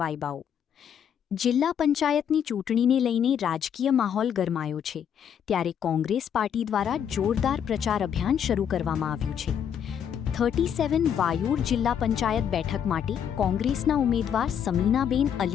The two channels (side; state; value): right; quieter; 8.5 dB